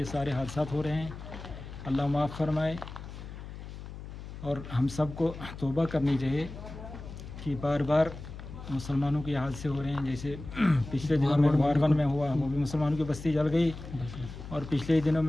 सारे हादसात हो रहे हैं, अल्लाह माफ़ फरमाए। और हम सबको तौबा करनी चाहिए कि बार बार मुसलमानों के हादसे हो रहे हैं। जैसे पिछले दिनों में वारवन में हुआ, वो भी मुसलमानों की बस्ती जल गई, और पिछले दिनों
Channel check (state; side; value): noise; left; hum, 12 dB below the sound